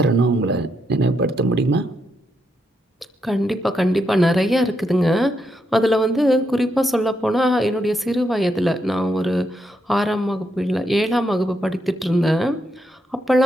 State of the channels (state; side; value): normal; both; correlation 0.80